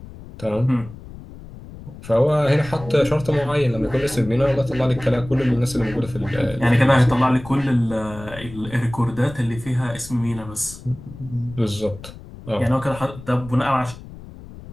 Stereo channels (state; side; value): noise; left; rumble, 16 dB below the sound